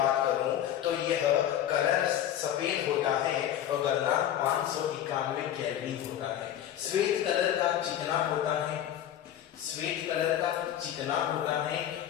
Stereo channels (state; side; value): quieter; right; 10.9 dB